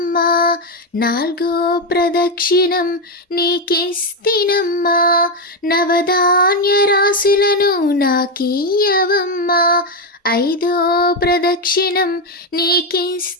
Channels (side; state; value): both; normal; correlation 0.07